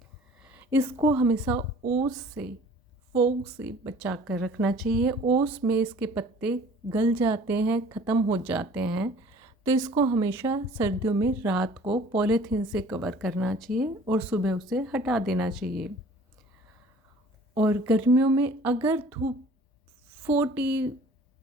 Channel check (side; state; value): both; normal; correlation 0.50